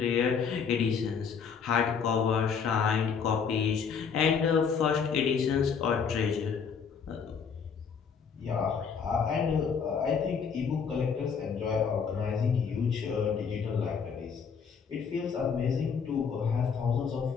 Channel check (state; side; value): quieter; right; 6.3 dB